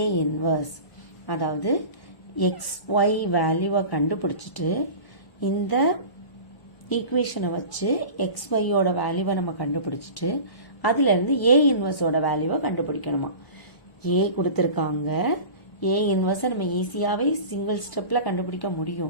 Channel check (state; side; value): late; right; 1.0 ms